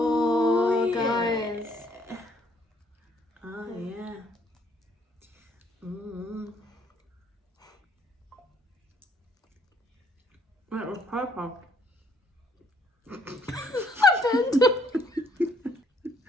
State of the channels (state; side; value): normal; both; correlation 0.66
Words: yeah. guys. Oh yeah. That was purple.